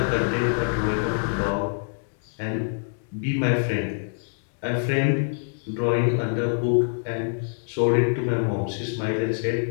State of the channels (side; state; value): right; silent; digital silence